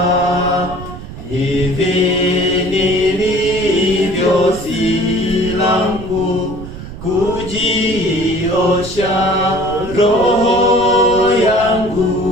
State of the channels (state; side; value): noise; right; rumble, 12 dB below the sound